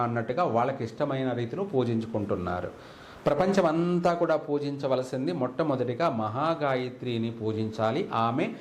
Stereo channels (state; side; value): identical; both; correlation 1.00